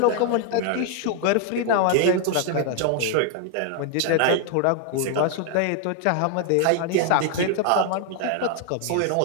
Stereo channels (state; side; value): different; both; correlation 0.00